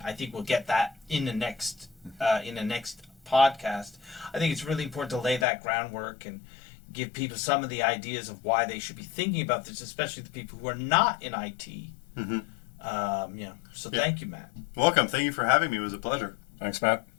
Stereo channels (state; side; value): drops out; right; at 5.5 s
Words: I think we'll get that in the next podcast. I think it's really important to lay that groundwork and give people some of the ideas of why they should be thinking about this, especially the people who are not in IT. So thank you, Matt. Welcome. Thank you for having me. It was a pleasure. Thanks, Matt.